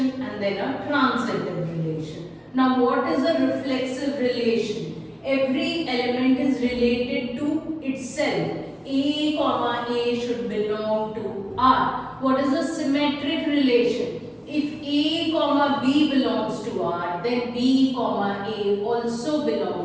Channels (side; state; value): both; identical; correlation 1.00